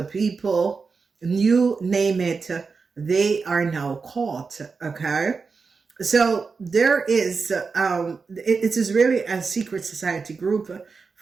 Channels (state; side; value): quieter; left; 4.8 dB